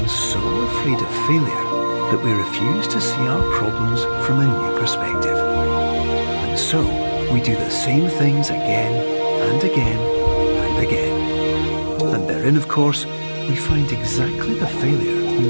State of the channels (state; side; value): inverted; both; correlation -1.00